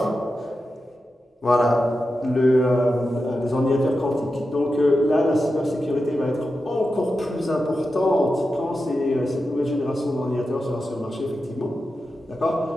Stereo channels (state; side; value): normal; both; correlation 0.90